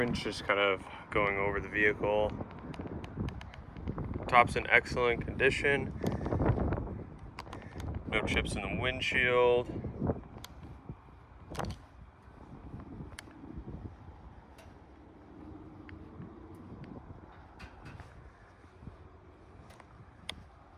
Just kind of going over the vehicle. Top's in excellent condition. No chips in the windshield.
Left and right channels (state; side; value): identical; both; correlation 1.00